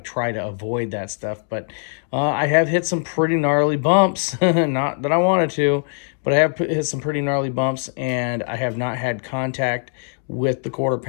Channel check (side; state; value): right; silent; digital silence